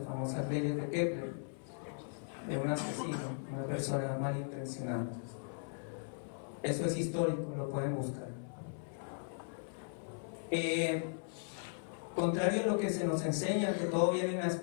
famosas leyes de Kepler, de un asesino, una persona malintencionada. Eso es histórico, lo pueden buscar. Contrario a lo que se nos enseña, que todo viene de una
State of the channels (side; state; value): right; silent; 53 dB below the other